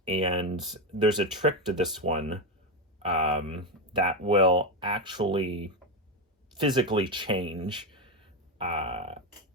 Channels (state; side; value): normal; both; correlation 0.11